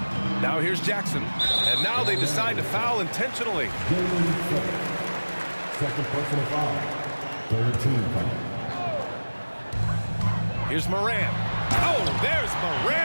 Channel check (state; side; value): inverted; both; correlation -1.00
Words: Now here's Jackson, and now they decide to foul intentionally. Second personal foul. 13 foul. Here's Morant. Oh, there's